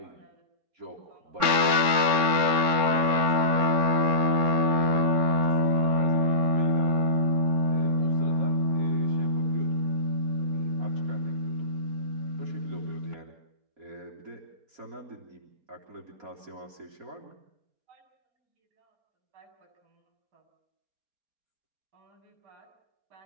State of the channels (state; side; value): late; left; 4.3 ms